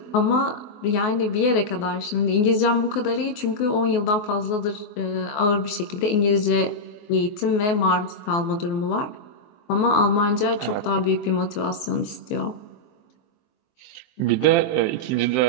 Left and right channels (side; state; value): right; late; 24 ms